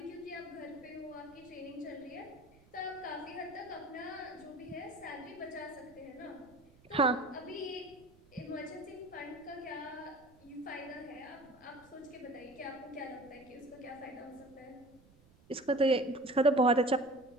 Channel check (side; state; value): right; noise; rumble, 27 dB below the sound